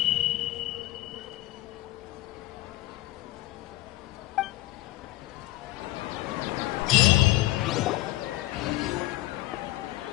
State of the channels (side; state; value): right; quieter; 17.6 dB